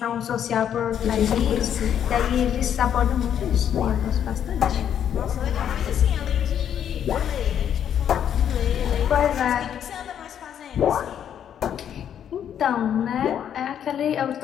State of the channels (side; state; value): right; quieter; 9.3 dB